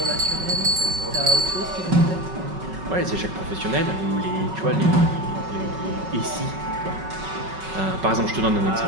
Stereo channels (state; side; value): late; left; 5.4 ms